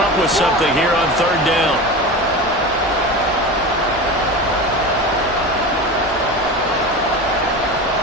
with something here on 3rd down.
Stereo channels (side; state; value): both; normal; correlation 0.28